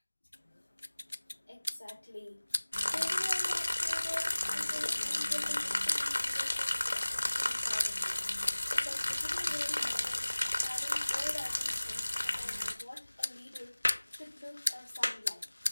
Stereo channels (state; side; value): inverted; both; correlation -1.00